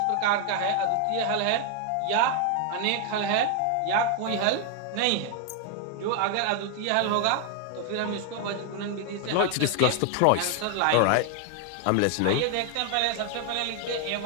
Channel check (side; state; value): both; different; correlation 0.00